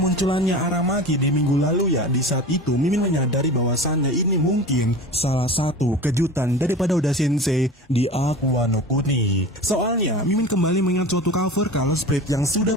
Aramaki di minggu lalu ya, di saat itu Mimin menyadari bahwasannya ini mungkin salah satu kejutan daripada Oda Sensei di Aqua no Kuni. Soalnya, Mimin kembali mengingat suatu cover Color Spread yang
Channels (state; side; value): normal; both; correlation 0.34